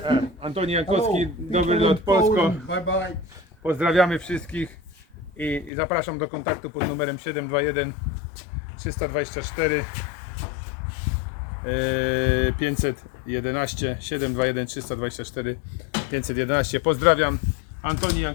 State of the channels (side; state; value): right; drops out; at 5.7 s